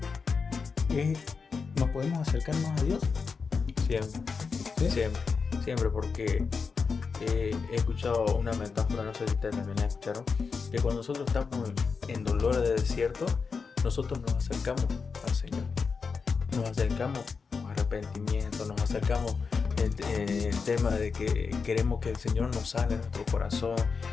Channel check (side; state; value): right; quieter; 5.2 dB